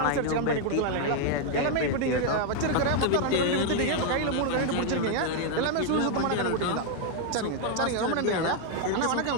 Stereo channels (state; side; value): different; both; correlation 0.00